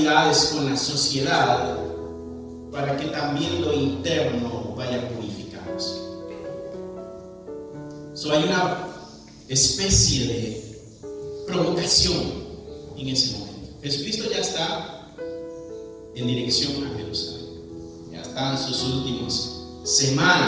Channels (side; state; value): both; identical; correlation 1.00